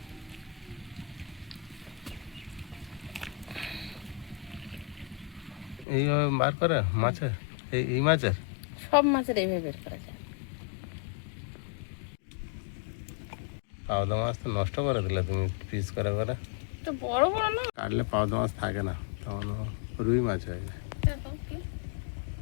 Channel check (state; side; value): drops out; right; at 5.9 s